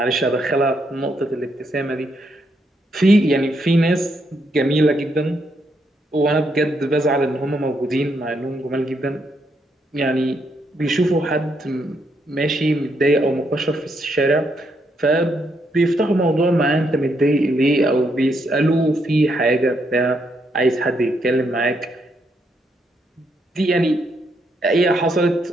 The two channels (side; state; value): both; normal; correlation 0.77